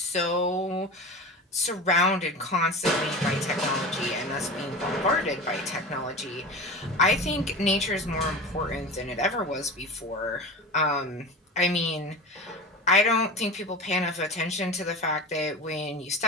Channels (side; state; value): both; normal; correlation 0.30